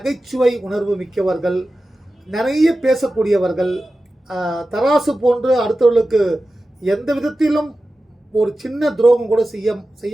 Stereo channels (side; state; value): both; normal; correlation 0.94